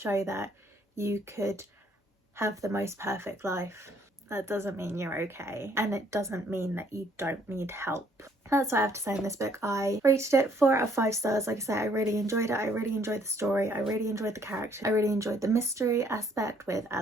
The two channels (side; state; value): both; normal; correlation 0.64